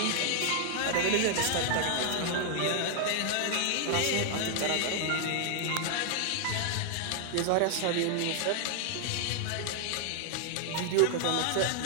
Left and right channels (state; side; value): different; both; correlation 0.00